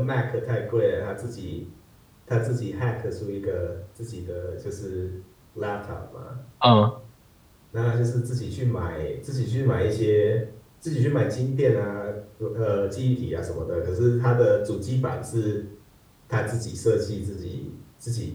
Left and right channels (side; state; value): both; identical; correlation 1.00